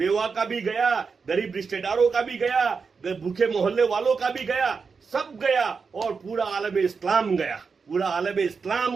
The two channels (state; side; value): quieter; left; 5.2 dB